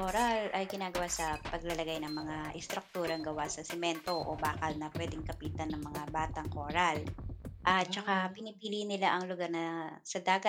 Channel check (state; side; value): identical; both; correlation 1.00